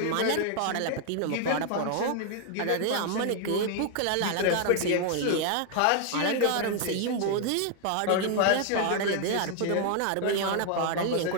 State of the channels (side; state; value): both; different; correlation 0.00